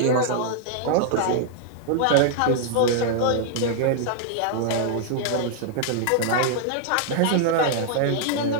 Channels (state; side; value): different; both; correlation -0.01